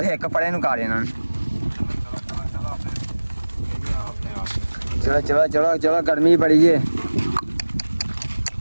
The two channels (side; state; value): both; inverted; correlation -1.00